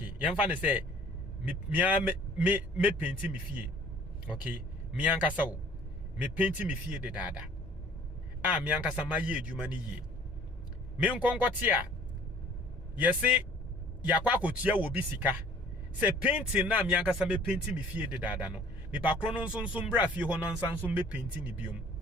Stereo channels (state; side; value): normal; both; correlation 0.52